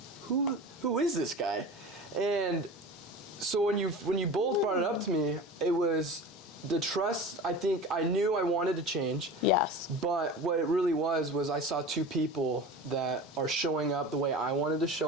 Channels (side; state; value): both; normal; correlation 0.34